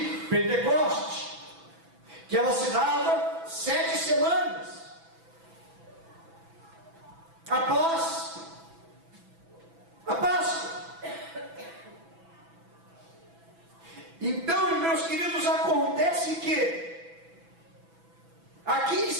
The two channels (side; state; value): left; late; 6.0 ms